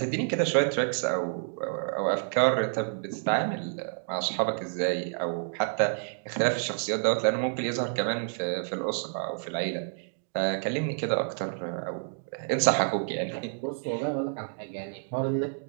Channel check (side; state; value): left; silent; digital silence